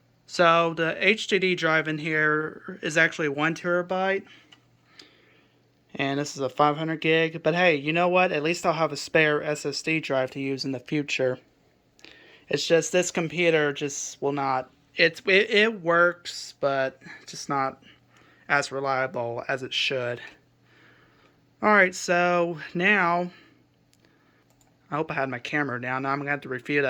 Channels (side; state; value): both; identical; correlation 1.00